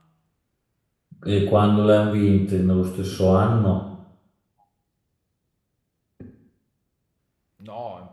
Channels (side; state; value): both; identical; correlation 1.00